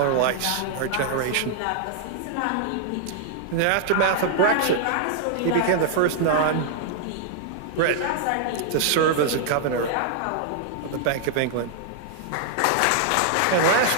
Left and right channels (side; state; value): both; different; correlation -0.01